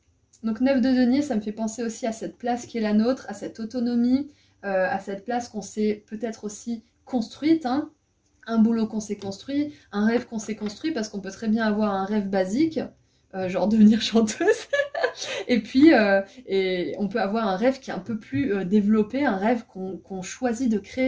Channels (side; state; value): both; identical; correlation 1.00